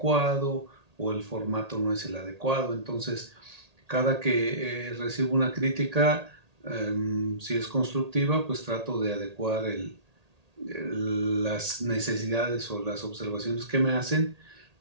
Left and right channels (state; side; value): late; left; 1.8 ms